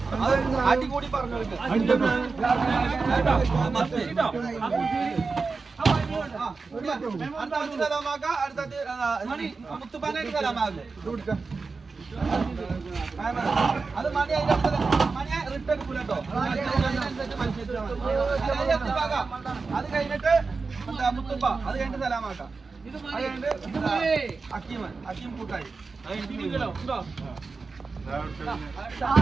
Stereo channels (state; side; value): quieter; left; 4.3 dB